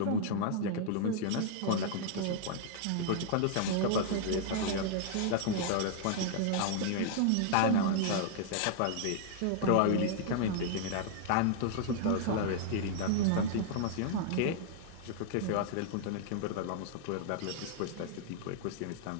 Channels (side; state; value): both; different; correlation -0.01